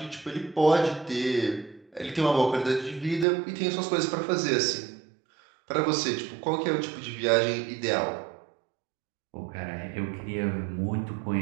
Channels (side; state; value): left; drops out; at 3.2 s